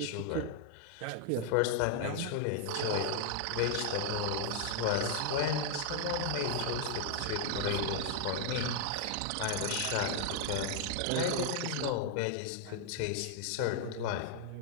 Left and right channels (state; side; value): different; both; correlation 0.00